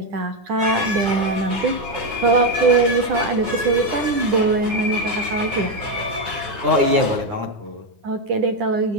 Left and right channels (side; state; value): left; late; 9.9 ms